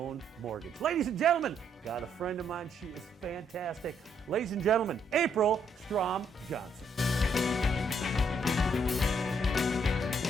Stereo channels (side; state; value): both; normal; correlation 0.72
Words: Mortgage. Ladies and gentlemen, got a friend of mine. She is fantastic. Ladies and gentlemen, April Strom-Johnson.